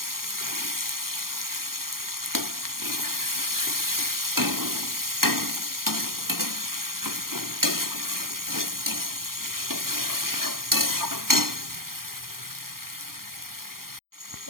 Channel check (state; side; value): late; left; 0.92 ms